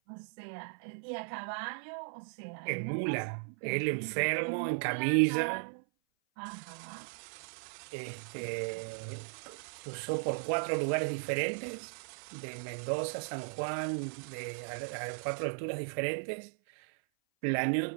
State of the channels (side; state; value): left; silent; 54 dB below the other